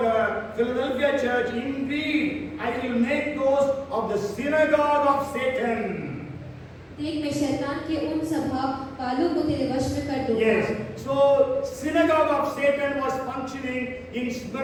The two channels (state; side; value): identical; both; correlation 1.00